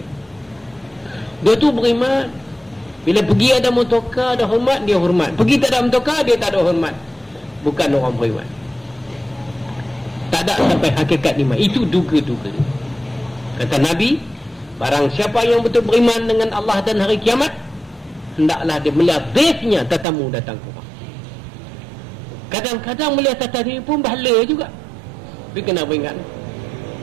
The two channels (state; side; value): drops out; left; at 20.1 s